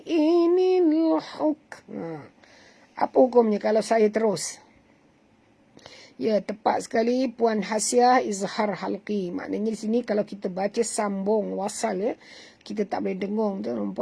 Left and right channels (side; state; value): both; identical; correlation 1.00